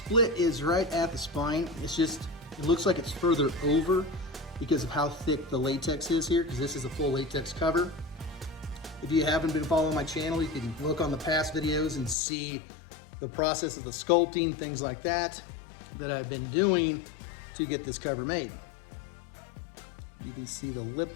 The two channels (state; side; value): drops out; right; at 12.2 s